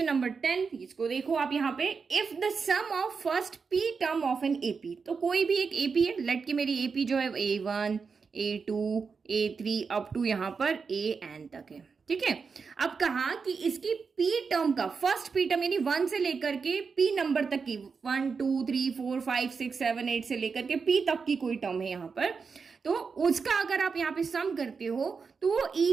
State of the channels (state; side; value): quieter; left; 5.3 dB